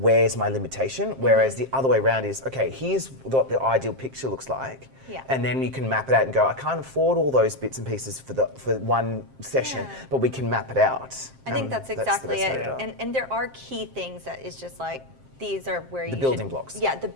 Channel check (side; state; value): left; late; 7.5 ms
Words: my limitation? Whereas the other way around is, okay, here's what the ideal picture looks like. Yeah. And then you can map it out and go, I can't afford all those bits and pieces for one session, but we can map it out. I think that's exactly the best way it. to do And there are key things that is just like, these are where you The building blocks. Yeah, the